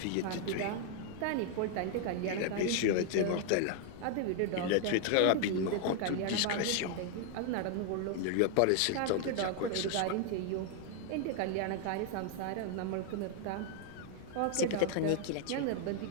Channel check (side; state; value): both; different; correlation 0.00